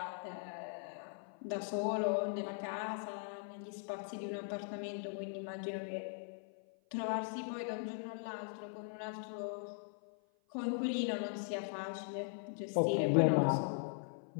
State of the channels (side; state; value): right; silent; 51 dB below the other